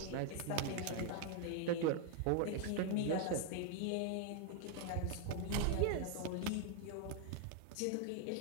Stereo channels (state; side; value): different; both; correlation 0.00